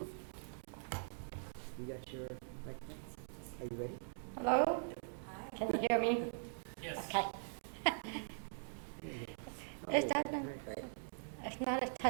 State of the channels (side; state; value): left; silent; digital silence